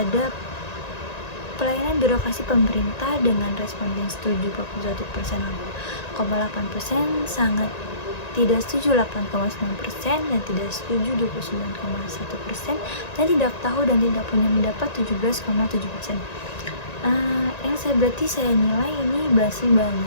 pelayanan birokrasi pemerintah dengan responden setuju 41,8%, sangat tidak setuju 8,9%, dan tidak setuju 29,1%, dan tidak tahu dan tidak punya pendapat 17,7%. Yang saya nilai ini masih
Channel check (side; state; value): right; late; 1.9 ms